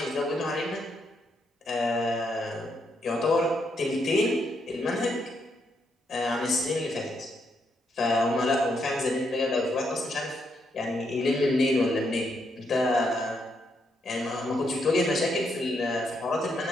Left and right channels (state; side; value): normal; both; correlation 0.78